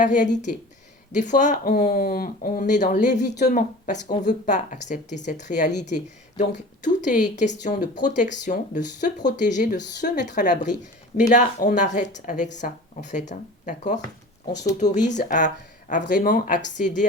réalité. Des fois, on est dans l'évitement parce qu'on ne veut pas accepter cette réalité. Donc, tout est question de protection, de se protéger, de se mettre à l'abri. Mais là, on arrête avec ça, en fait. Hein, d'accord? On s'autorise à vraiment accéder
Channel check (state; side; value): normal; both; correlation 0.39